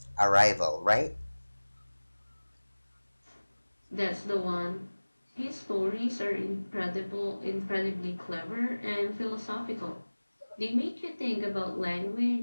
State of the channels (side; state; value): both; inverted; correlation -1.00